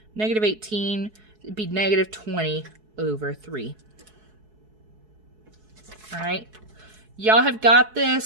negative 18, it'd be negative 20/3. All right. Y'all have got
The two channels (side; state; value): left; late; 4.7 ms